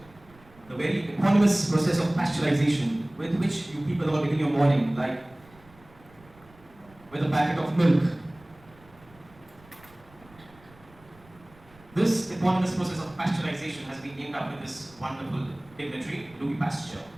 the very eponymous process of pasteurization with which you people all begin your morning, like with a packet of milk. This eponymous process of pasteurization has been named after this wonderful dignitary, Louis Pasteur.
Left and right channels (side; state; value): right; noise; rumble, 26 dB below the sound